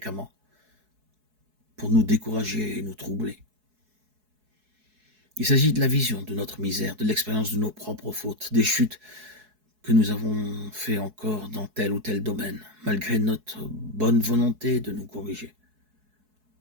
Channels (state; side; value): late; left; 4.7 ms